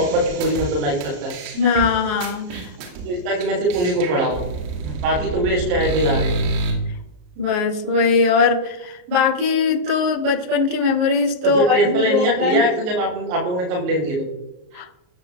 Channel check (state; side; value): late; left; 33 ms